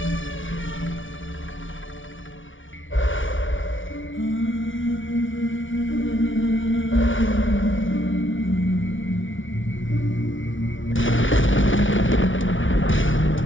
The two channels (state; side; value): late; right; 0.56 ms